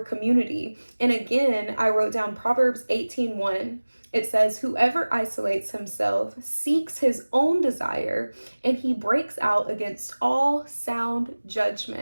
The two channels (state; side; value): inverted; both; correlation -1.00